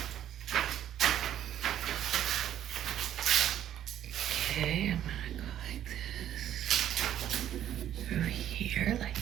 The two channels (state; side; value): quieter; left; 11.0 dB